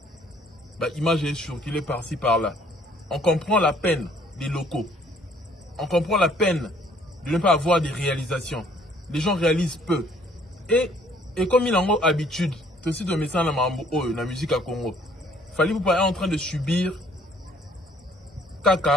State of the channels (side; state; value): both; normal; correlation 0.60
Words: Image est surculée par-ci par-là. On comprend la peine des locaux. On comprend la peine de ne pas avoir des réalisations. Les gens réalisent peu. Et comme il en a habitude, c'est aussi de message dans la musique à Congo. Fali pour pas être en train de subir